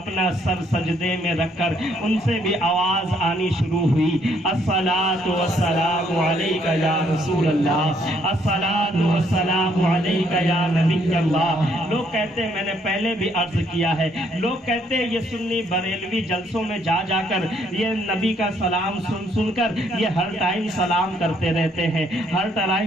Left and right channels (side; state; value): both; normal; correlation 0.69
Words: سر سجدے میں رکھ کر ان سے بھی آواز آنی شروع ہوئی الصلاۃ والسلام علیک یا رسول اللہ، الصلاۃ والسلام علیک یا نبی اللہ۔ لوگ کہتے ہیں، میں نے پہلے بھی عرض کیا ہے، لوگ کہتے ہیں یہ سنی بریلوی جلسوں میں جا کر یہ نبی کا سلام سن کر یہ ہر ٹائم سلام کرتے رہتے ہیں، ہر